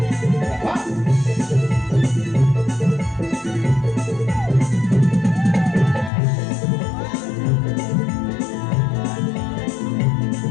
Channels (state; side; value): drops out; right; at 6.1 s